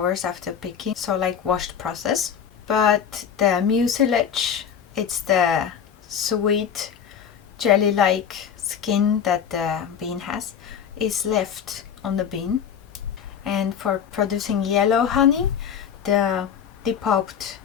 after picking, so like washed process. But the mucilage, it's the sweet jelly-like skin that the bean has, is left on the bean. And for producing yellow honey, the depulped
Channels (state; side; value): quieter; right; 8.0 dB